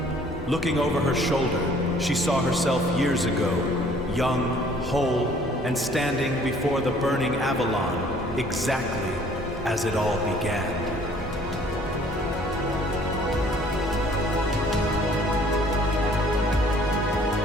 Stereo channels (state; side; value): normal; both; correlation 0.57